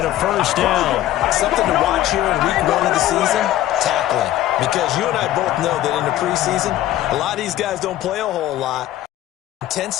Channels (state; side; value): quieter; right; 13.7 dB